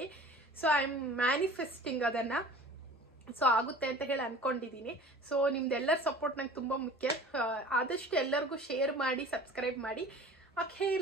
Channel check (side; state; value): both; normal; correlation 0.43